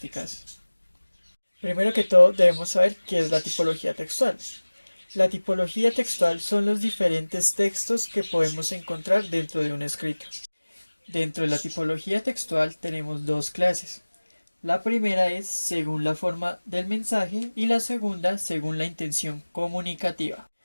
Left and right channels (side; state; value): both; inverted; correlation -1.00